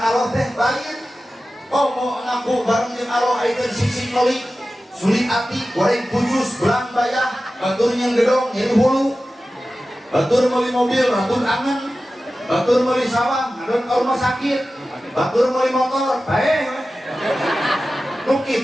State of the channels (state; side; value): normal; both; correlation 0.95